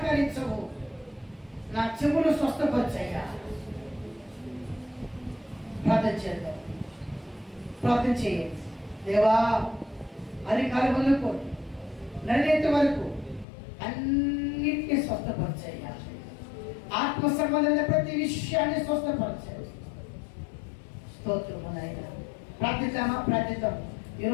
నా చెవులు స్వస్థపరచయ్యా. ప్రార్థన చేద్దాం. ప్రార్థన చేయండి. దేవా, అరికాల వరకు నడినేటి వరకు అన్నిటినీ స్వస్థపరచయ్యా. ఆత్మ సంబంధమైన ప్రతి విషయాన్ని స్వస్థపరచాయి. స్తోత్రము నాయనా. ప్రార్థిద్దామా? ప్రార్థిద్దాం.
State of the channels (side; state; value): right; drops out; at 13.5 s